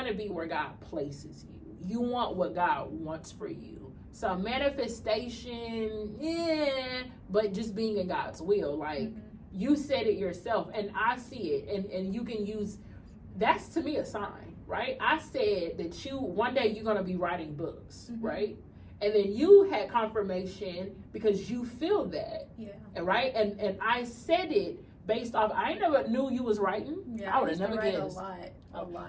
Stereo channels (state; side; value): identical; both; correlation 1.00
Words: to be where God places you. You want what God wants for you. So manifestation, but just being in God's will. Like, you said it yourself, and I see it, and you can use, that's to me a sign, right? I said that one day you're going to be writing books, right? And then you had confirmation because you feel that, right? And I said it based off, I never knew you was writing. Yeah, I would have never guessed. A